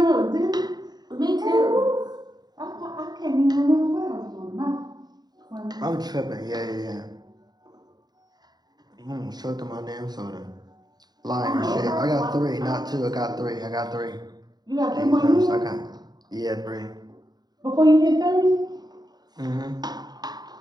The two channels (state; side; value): late; left; 0.20 ms